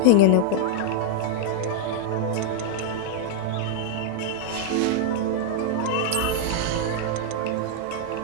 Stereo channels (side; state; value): both; different; correlation 0.00